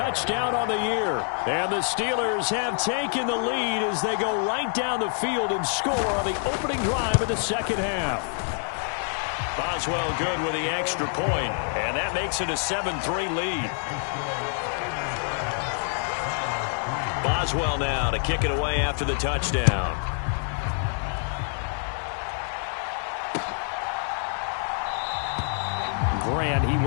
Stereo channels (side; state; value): right; silent; 61 dB below the other